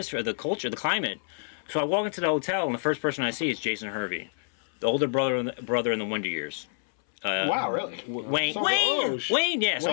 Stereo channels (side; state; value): right; silent; 60 dB below the other